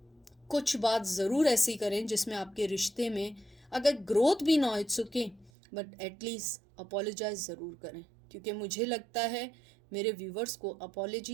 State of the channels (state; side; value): drops out; left; at 5.5 s